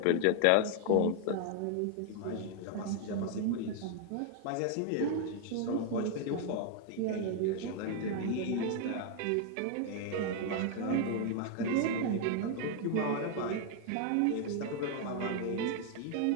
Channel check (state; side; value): different; both; correlation 0.00